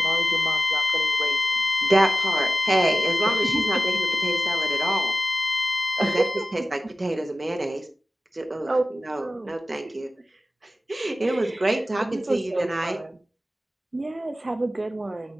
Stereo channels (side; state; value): both; normal; correlation 0.95